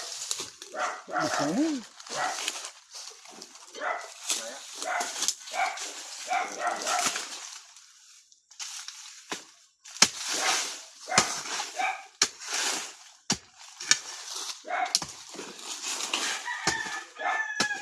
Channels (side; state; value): both; identical; correlation 1.00